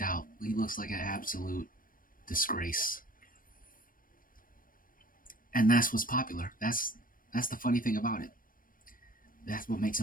out. He looks like an absolute disgrace. And that's what's popular. That's the funny thing about it. That's what makes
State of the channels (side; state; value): right; late; 0.40 ms